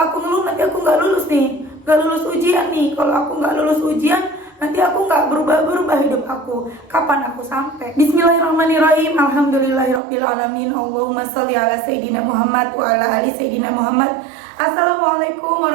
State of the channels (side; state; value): left; drops out; at 10.0 s